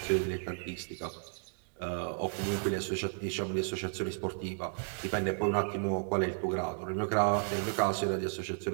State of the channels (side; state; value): left; silent; 55 dB below the other